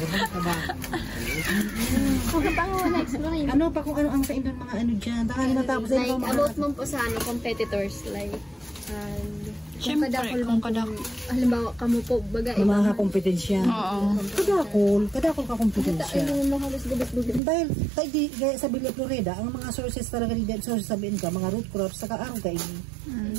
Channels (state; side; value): drops out; left; at 17.4 s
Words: Ano pa kung ano ang sa indon mga ano dyan? Tanganing natapos like, about mo po sa ano, competitors, like, Siyempre, kung kadakol. Halimbawa, kamo po, baga, mga kakompetensya. Kadakol ka kompetensya. Dahil sa Villa Florida, ang mga sources talaga ni sources sa BNK, mga root crops, saka araw kain,